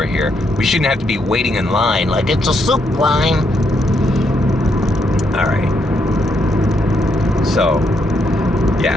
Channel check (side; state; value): both; normal; correlation 0.76